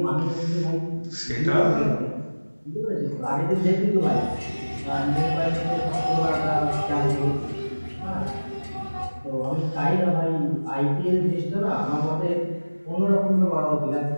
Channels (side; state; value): both; inverted; correlation -1.00